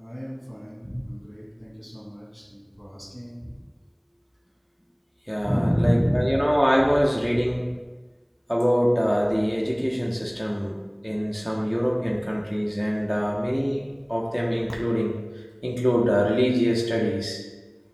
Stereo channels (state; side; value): identical; both; correlation 1.00